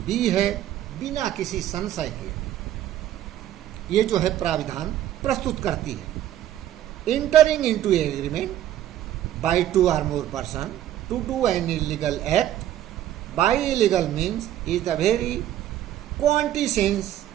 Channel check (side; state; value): left; quieter; 12.3 dB